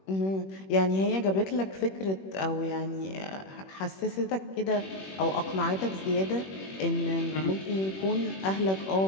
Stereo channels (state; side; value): late; right; 21 ms